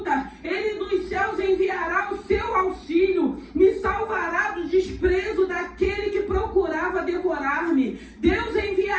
Ele dos céus enviará o seu auxílio, me salvará do desprezo daquele que procurava devorar-me. Deus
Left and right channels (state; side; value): identical; both; correlation 1.00